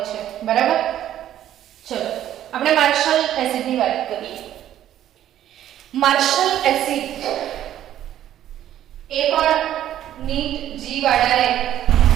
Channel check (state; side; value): quieter; left; 11.8 dB